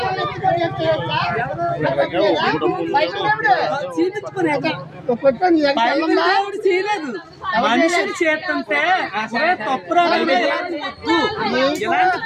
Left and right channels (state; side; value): identical; both; correlation 1.00